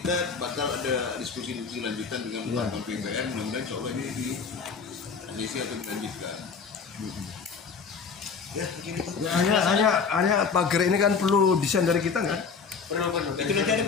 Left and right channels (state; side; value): quieter; right; 5.5 dB